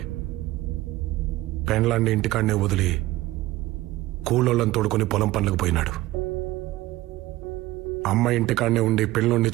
పెండ్లాన్ని ఇంటికాడనే వదిలి కూలోళ్ళని తోడుకుని పొలం పనులకు పోయినాడు. అమ్మ ఇంటికాడనే ఉండి పిల్లోడిని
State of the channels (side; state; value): left; quieter; 17.4 dB